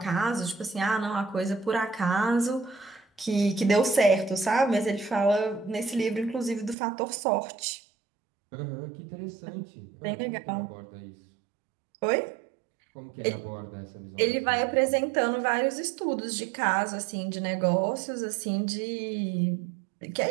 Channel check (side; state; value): left; drops out; at 6.8 s